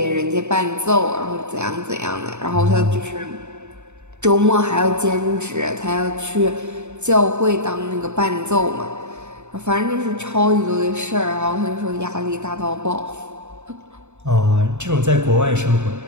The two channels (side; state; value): left; late; 0.83 ms